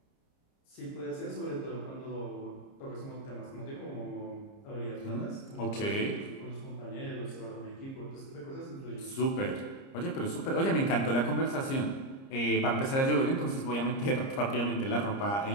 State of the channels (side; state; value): right; late; 30 ms